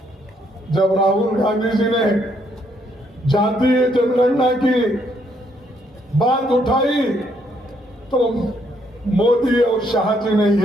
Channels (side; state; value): both; normal; correlation 0.71